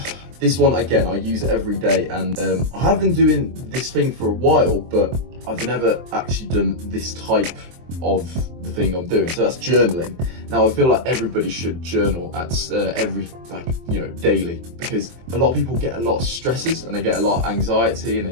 this one again, I use it every day, and I have been doing this thing for a while, but I've never actually done this type of the thing I'm doing. So that's journaling. Now I feel like everybody should journal at every, like, you know, daily, because a lot of people get a lot of stresses and they get a lot of anxiety and they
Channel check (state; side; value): late; left; 23 ms